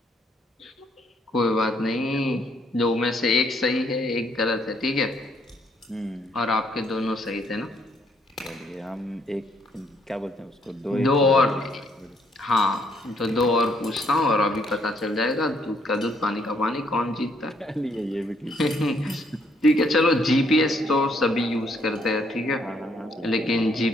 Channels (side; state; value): both; normal; correlation 0.69